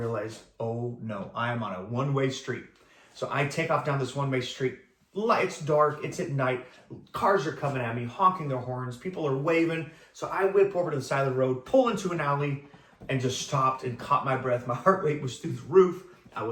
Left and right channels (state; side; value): identical; both; correlation 1.00